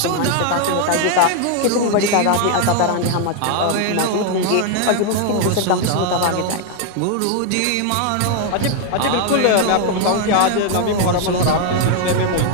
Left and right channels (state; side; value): different; both; correlation 0.00